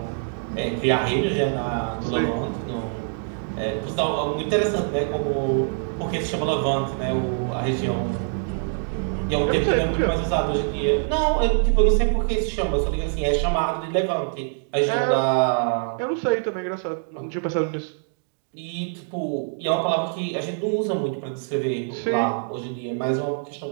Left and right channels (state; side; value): silent; left; 62 dB below the other